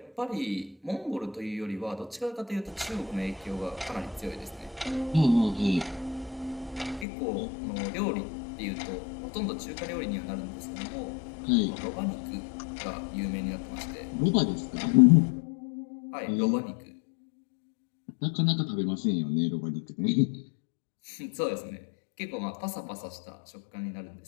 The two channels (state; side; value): drops out; right; at 7.1 s